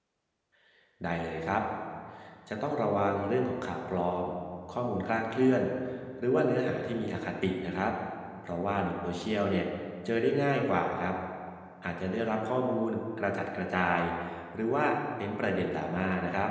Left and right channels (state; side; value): identical; both; correlation 1.00